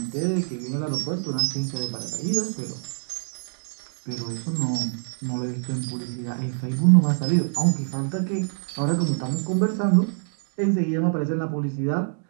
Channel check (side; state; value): left; silent; digital silence